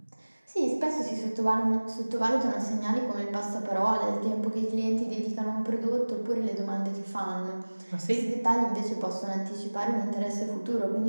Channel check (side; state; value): both; inverted; correlation -1.00